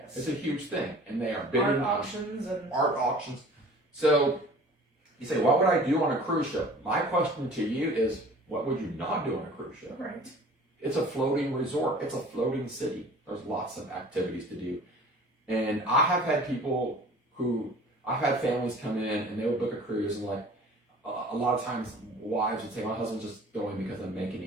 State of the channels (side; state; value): both; normal; correlation 0.46